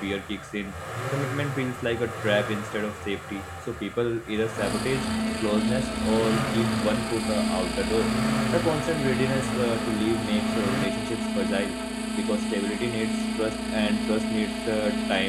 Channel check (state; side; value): identical; both; correlation 1.00